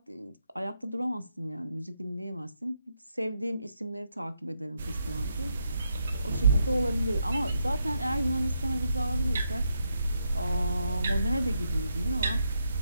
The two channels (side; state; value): both; inverted; correlation -0.81